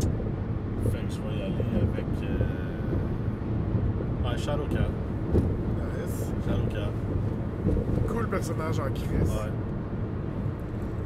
Fait que je vais y aller avec Shadowcat. Nice. Shadowcat. Cool personnage en crise. Ouais.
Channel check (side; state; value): both; identical; correlation 1.00